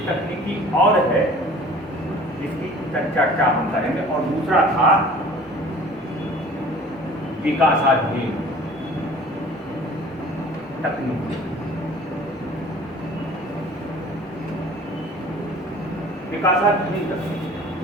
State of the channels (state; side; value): normal; both; correlation 0.47